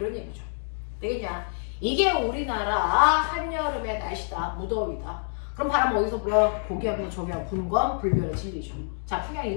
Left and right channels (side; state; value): right; silent; digital silence